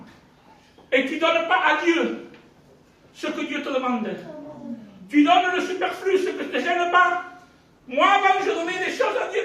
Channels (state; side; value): identical; both; correlation 1.00